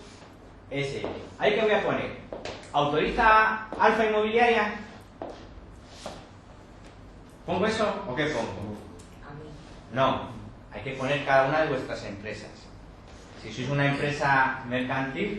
S. ¿Ahí qué voy a poner? ¿Autoriza Alfa Inmobiliaria? ¿Pongo eso o qué pongo? No, hay que poner cada una de vuestras empresas. Si sois una empresa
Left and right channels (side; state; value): both; identical; correlation 1.00